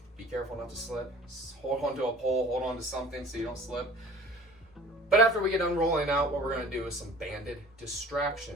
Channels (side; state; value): both; normal; correlation 0.46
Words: Be careful not to slip. Hold on to a pole, hold on to something so you don't slip. But after we get done rolling out, what we're gonna do is some banded